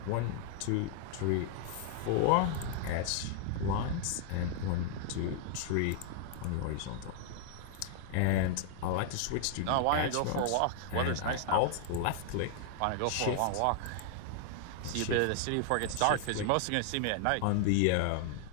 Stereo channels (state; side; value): different; both; correlation 0.00